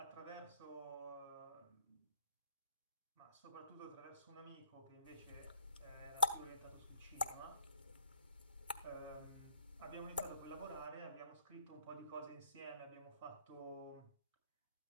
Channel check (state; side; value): inverted; both; correlation -0.59